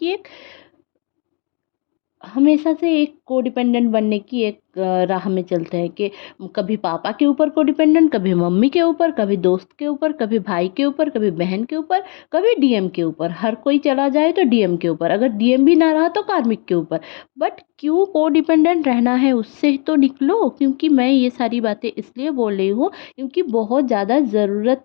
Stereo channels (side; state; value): right; quieter; 35.9 dB